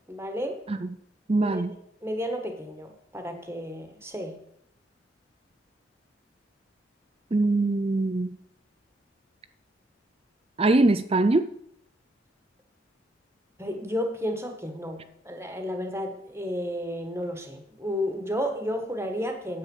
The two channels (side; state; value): both; normal; correlation 0.74